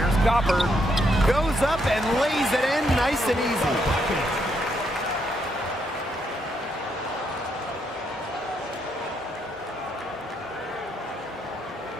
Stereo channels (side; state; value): both; normal; correlation 0.76